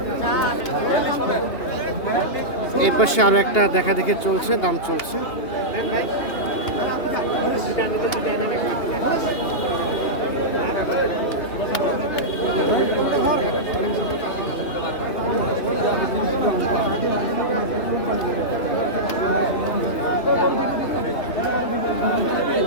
এর পাশে আরো একটা দেখা দেখে চলছে, দাম চলছে।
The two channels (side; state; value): right; late; 2.8 ms